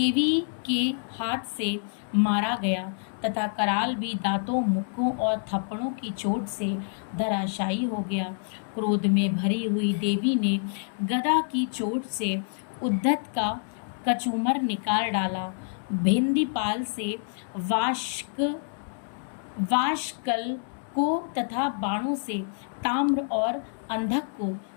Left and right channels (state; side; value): silent; right; digital silence